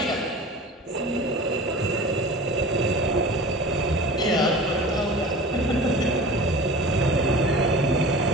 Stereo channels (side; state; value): both; normal; correlation 0.37